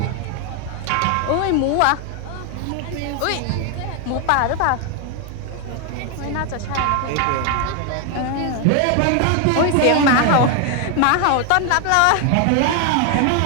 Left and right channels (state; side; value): different; both; correlation 0.01